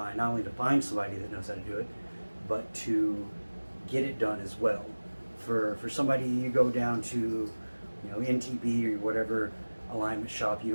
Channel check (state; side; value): inverted; both; correlation -1.00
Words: not only to find somebody that knows how to do it, but to get it done as well. For somebody you go down to, NTB or whatever alignment shop you